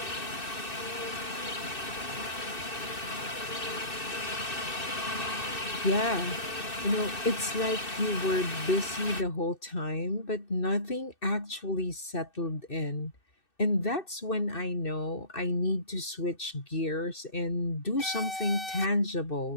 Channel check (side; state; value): right; late; 2.6 ms